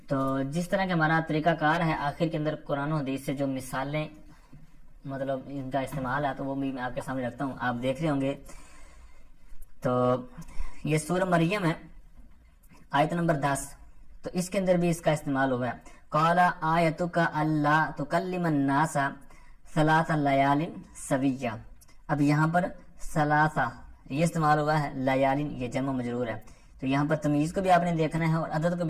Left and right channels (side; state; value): both; identical; correlation 1.00